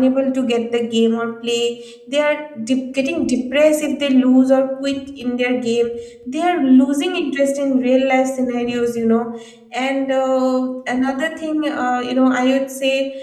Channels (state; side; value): identical; both; correlation 1.00